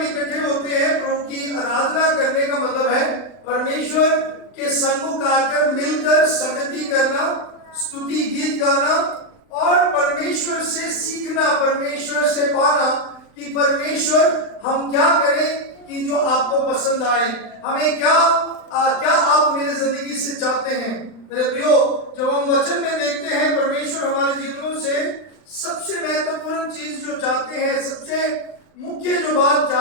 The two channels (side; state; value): right; late; 39 ms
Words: इकट्ठे होते हैं, प्रभु की आराधना करने का मतलब है परमेश्वर के सम्मुख आकर मिलकर संगति करना, स्तुति गीत गाना और परमेश्वर से सीखना, परमेश्वर से पाना कि परमेश्वर हम क्या करें कि जो आपको पसंद आए, हमें क्या आप मेरे जिंदगी से चाहते हैं। मेरे प्रियो, जब हम वचन में देखते हैं परमेश्वर हमारे जीवनों से सबसे महत्वपूर्ण चीज जो चाहते हैं, सबसे मुख्य जो बात